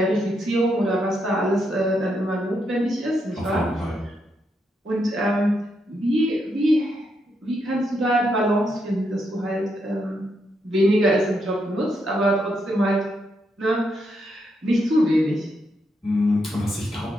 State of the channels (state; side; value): normal; both; correlation 0.80